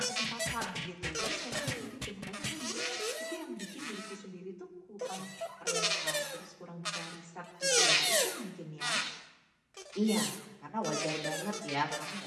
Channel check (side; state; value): both; identical; correlation 1.00